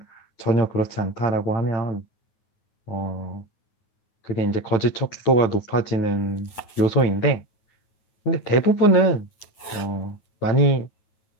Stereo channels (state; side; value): late; right; 9.4 ms